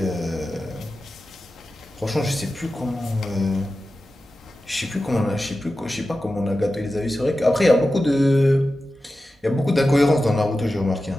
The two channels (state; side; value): normal; both; correlation 0.93